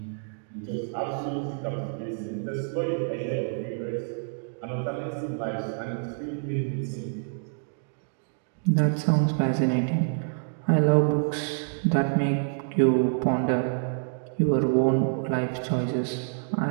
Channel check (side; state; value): left; silent; digital silence